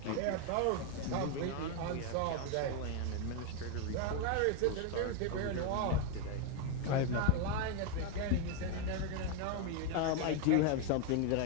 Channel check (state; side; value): different; both; correlation 0.01